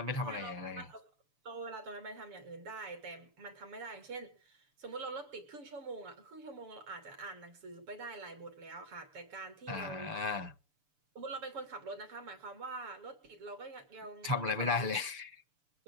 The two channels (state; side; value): late; left; 6.9 ms